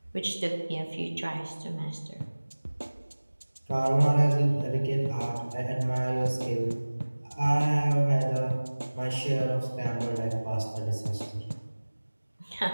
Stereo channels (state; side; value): inverted; both; correlation -1.00